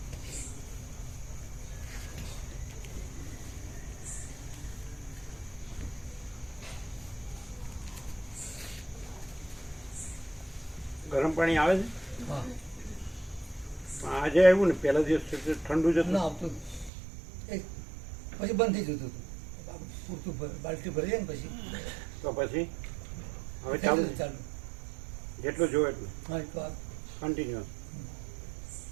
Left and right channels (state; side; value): drops out; left; at 16.9 s